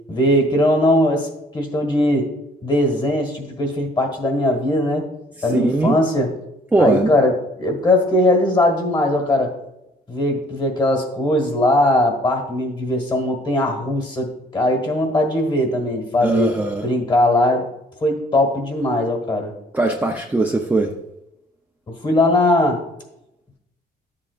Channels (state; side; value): normal; both; correlation 0.59